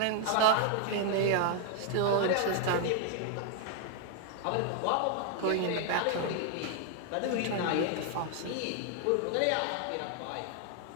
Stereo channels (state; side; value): different; both; correlation 0.00